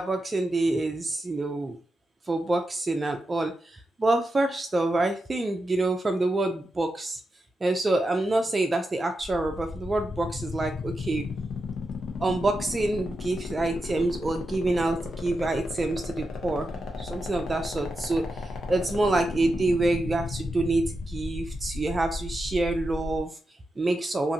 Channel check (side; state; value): both; normal; correlation 0.88